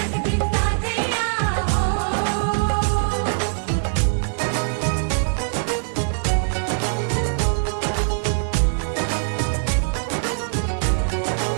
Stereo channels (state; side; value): silent; left; 60 dB below the other